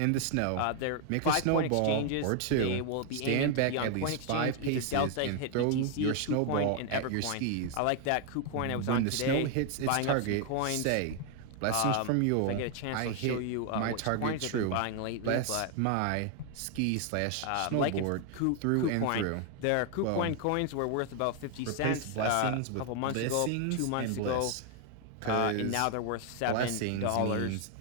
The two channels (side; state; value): both; different; correlation 0.00